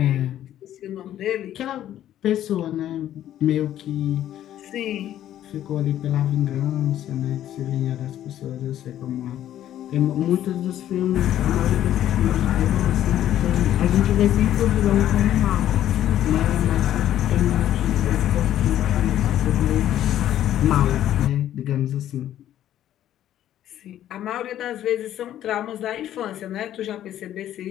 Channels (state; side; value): quieter; right; 11.9 dB